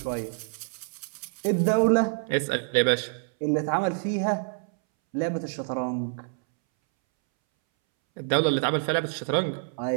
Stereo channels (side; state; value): left; silent; 60 dB below the other